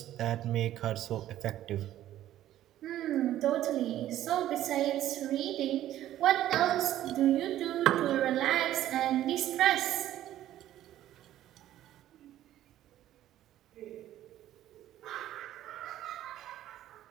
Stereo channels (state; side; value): quieter; left; 12.9 dB